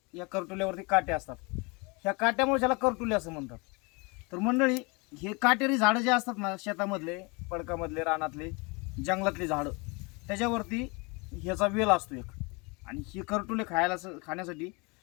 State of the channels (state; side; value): quieter; right; 28.7 dB